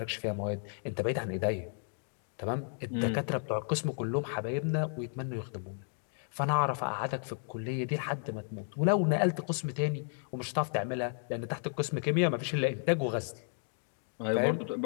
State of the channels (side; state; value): right; silent; 56 dB below the other